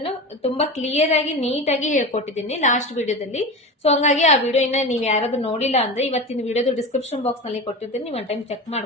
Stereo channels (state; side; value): normal; both; correlation 0.26